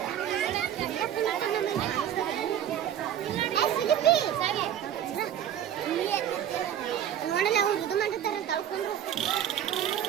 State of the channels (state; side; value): quieter; left; 10.4 dB